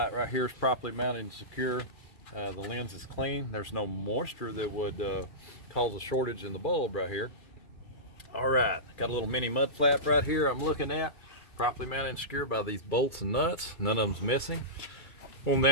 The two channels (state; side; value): late; right; 2.4 ms